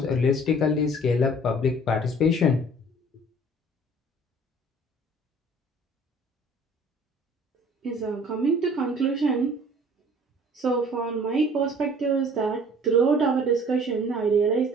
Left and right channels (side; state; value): both; normal; correlation 0.51